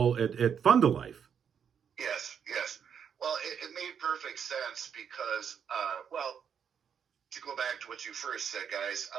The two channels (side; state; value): left; quieter; 7.7 dB